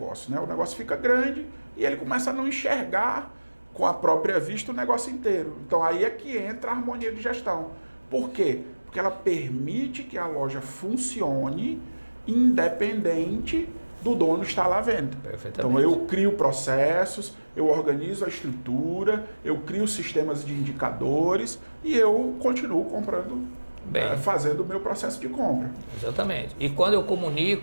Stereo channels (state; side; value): inverted; both; correlation -1.00